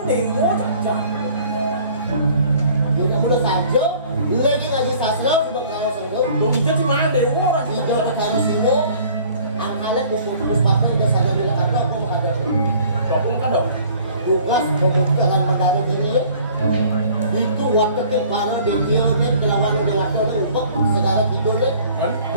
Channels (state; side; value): inverted; both; correlation -0.52